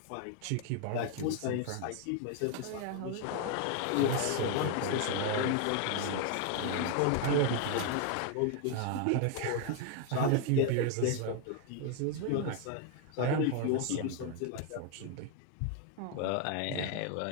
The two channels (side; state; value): both; different; correlation 0.01